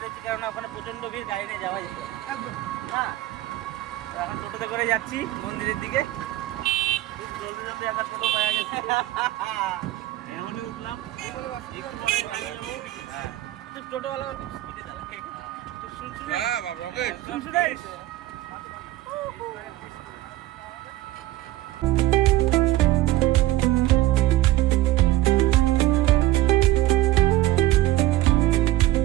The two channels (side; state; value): left; quieter; 16.1 dB